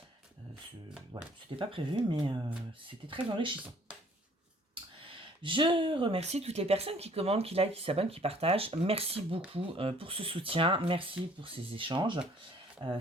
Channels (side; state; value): both; normal; correlation 0.57